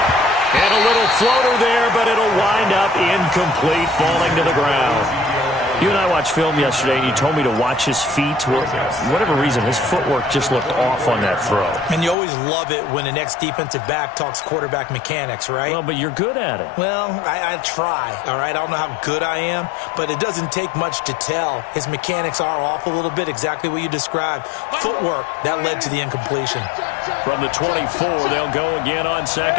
And a little floater there, but it'll wind up incomplete, falling to the ground. You and I watched film yesterday, and you told me to watch his feet. Well, for whatever reason, his footwork just looked off on that throw. And you always love it when an ex-defensive back talks quarterback mechanics, right? Well, but you're good at it. Well, I try, all right? I don't know how good I am, but it doesn't take much to tell. His mechanics are off a little bit, exactly what you described. Footwork, that led to the incompletion. From the 24, they'll go again on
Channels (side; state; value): right; drops out; at 12.2 s